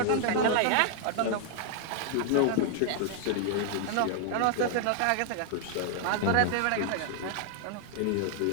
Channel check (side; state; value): both; different; correlation 0.00